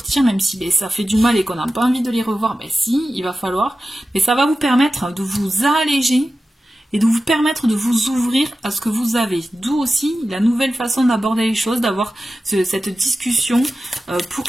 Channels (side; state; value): both; normal; correlation 0.94